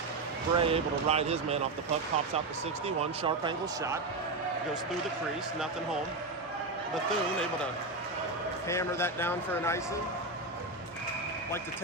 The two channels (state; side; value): quieter; left; 3.2 dB